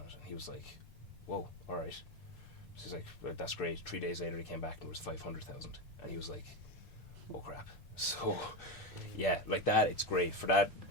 it. And he was like, whoa, all right. So he's like, well, that's great. 3 days later he came back and it was 500,000. And he was like, oh crap. So yeah, like that, it's great for that.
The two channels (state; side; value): normal; both; correlation 0.15